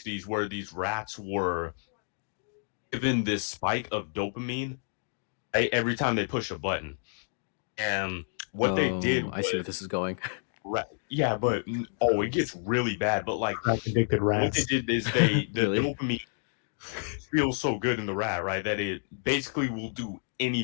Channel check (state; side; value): silent; right; digital silence